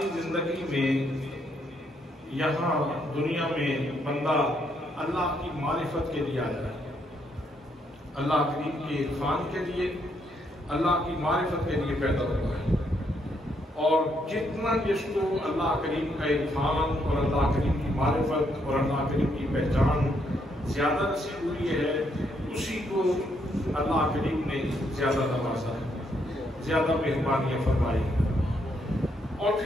زندگی میں یہاں دنیا میں بندہ اللہ کی معرفت کے لیے آیا ہے اللہ کریم کے عرفان کے لیے اللہ کی معرفت کے لیے پیدا ہوا ہے اور جتنا جس کو اللہ کریم کا عرفان اور اللہ کریم کی معرفت اور اللہ کریم کی پہچان زیادہ نصیب ہوئی ہے اسی کو اللہ کریم نے زیادہ نوازا، زیادہ مہربانیاں فرمائی، اور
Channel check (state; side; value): normal; both; correlation 0.74